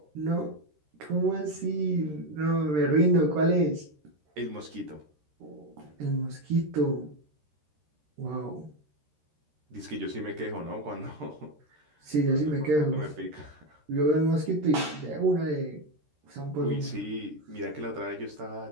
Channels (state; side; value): late; left; 13 ms